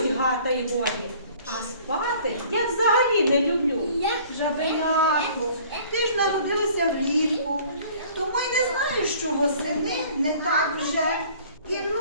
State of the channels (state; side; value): inverted; both; correlation -0.52